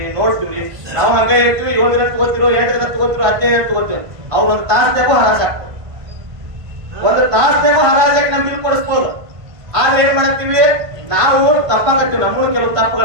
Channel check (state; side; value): late; left; 1.5 ms